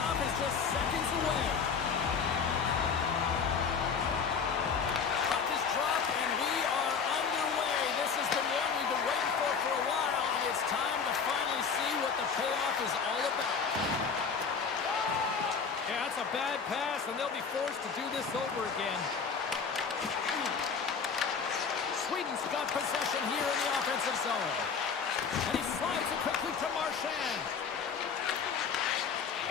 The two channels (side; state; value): right; quieter; 5.9 dB